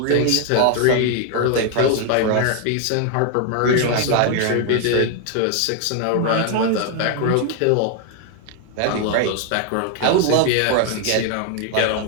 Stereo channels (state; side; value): different; both; correlation 0.01